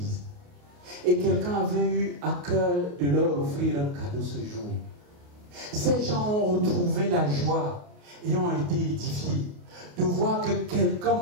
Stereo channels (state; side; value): late; left; 28 ms